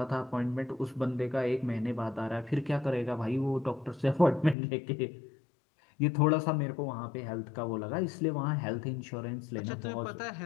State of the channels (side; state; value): right; drops out; at 4.5 s